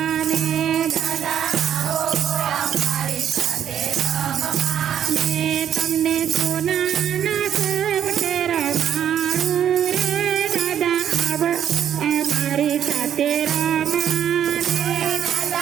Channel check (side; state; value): left; quieter; 9.6 dB